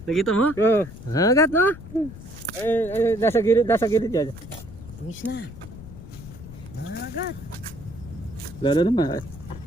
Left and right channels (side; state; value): left; noise; rumble, 14 dB below the sound